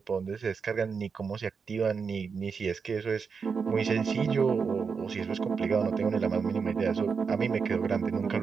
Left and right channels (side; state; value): left; quieter; 5.6 dB